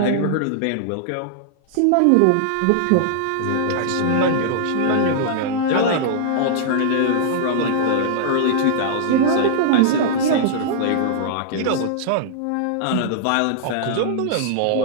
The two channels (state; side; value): different; both; correlation -0.01